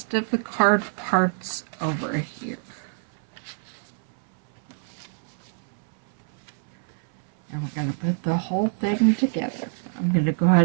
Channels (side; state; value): left; silent; 61 dB below the other